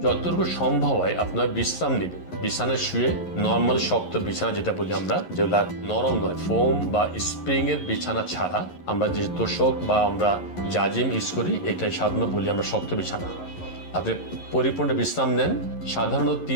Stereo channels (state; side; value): late; right; 11 ms